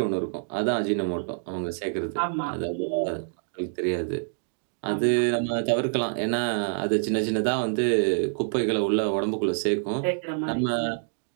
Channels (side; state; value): left; silent; digital silence